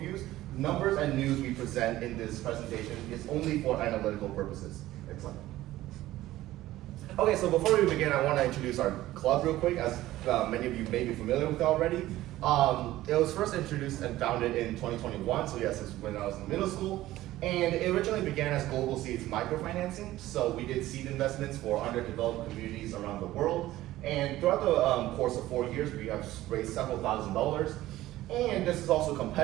Numbers and news we present in this presentation is only for analytical purposes. Excellent. Okay, so before we begin, I want to introduce our club real quick, as many of you may be familiar with it already. It was first introduced and founded in 2021, so yes, it's when I was in middle school. And it originally began as Global Seeds microfinancing. So we did seed investments for underdeveloped communities around the world. And throughout the course of 4 years, we have raised several $1,000s. And this is also a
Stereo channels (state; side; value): quieter; left; 15.6 dB